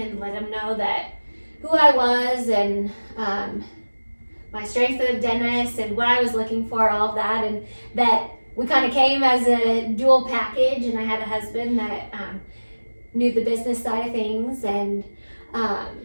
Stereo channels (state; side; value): inverted; both; correlation -1.00